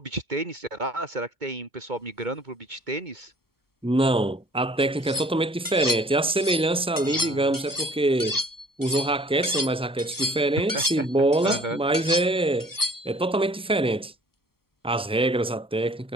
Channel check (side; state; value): both; normal; correlation 0.54